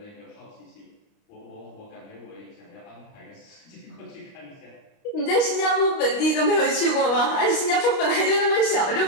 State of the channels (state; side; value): late; right; 29 ms